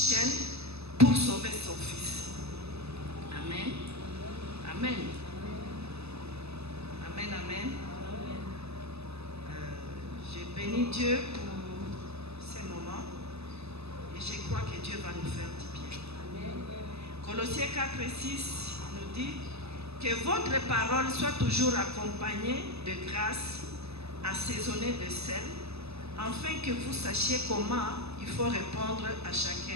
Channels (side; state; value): left; late; 0.79 ms